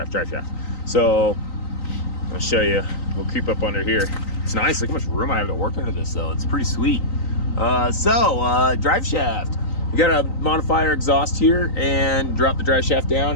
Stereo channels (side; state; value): right; late; 3.9 ms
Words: So I'll show you. We'll creep up under here. It's nice. Look how much room I have to work under this, though. It's pretty sweet. Drive shaft. We got to modify our exhaust here and drop the drive shaft